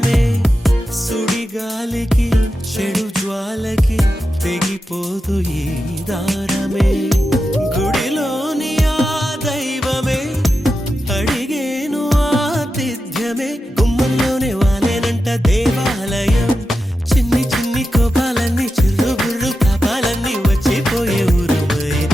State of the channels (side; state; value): both; normal; correlation 0.90